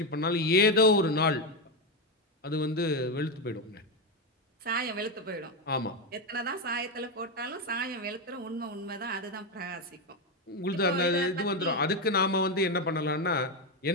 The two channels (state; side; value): normal; both; correlation 0.08